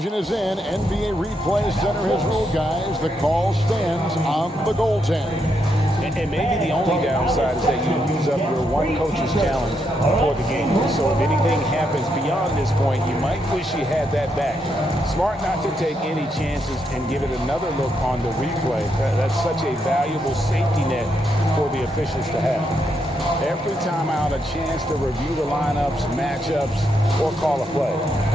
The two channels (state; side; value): normal; both; correlation 0.79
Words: is in. NBA Replay Center has ruled, guys. The call stands on the goaltend. And maybe the only downside is that you use up your one coach's challenge for the game. So if anything happens beyond this point, you might wish you had that back. Smart not to take any chances and give it another look on the replay. That's such a valuable safety net for the officials to have. Every time out, a chance to review the lineups, matchups, or call a play.